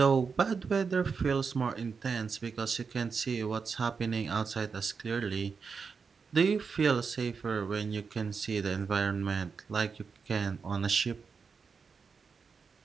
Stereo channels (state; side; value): quieter; left; 5.4 dB